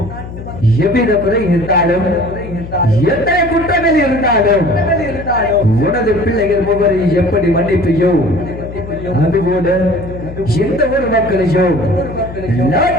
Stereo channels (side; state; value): left; noise; hum, 11 dB below the sound